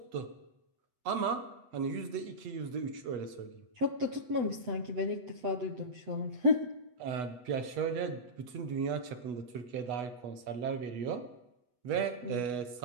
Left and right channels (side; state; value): left; late; 8.1 ms